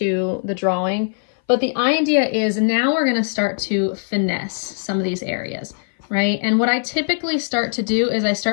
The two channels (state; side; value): silent; right; 59 dB below the other